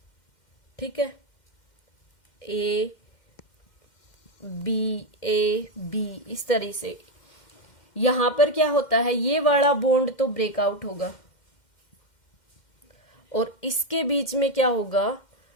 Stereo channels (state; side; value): late; right; 2.1 ms